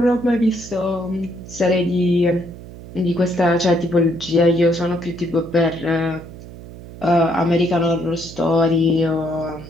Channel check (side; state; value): right; noise; hum, 15 dB below the sound